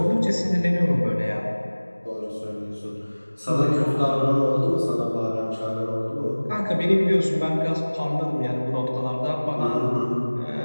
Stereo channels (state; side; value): inverted; both; correlation -1.00